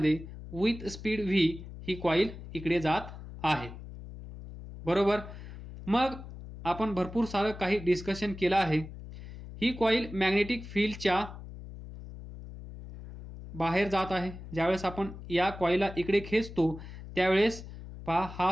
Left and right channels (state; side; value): noise; left; hum, 13 dB below the sound